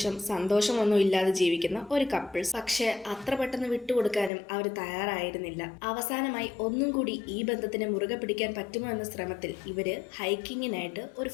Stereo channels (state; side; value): drops out; right; at 4.3 s